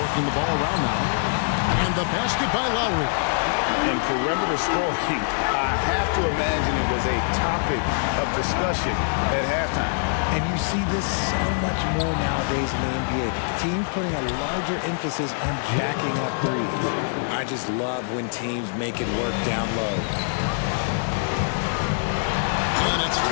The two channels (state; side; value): silent; right; digital silence